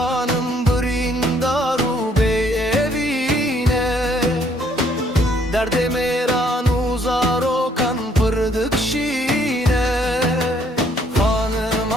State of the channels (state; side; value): normal; both; correlation 0.65